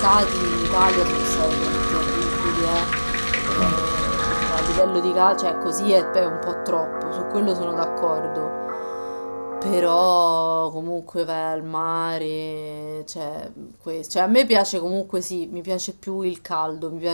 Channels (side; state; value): both; inverted; correlation -1.00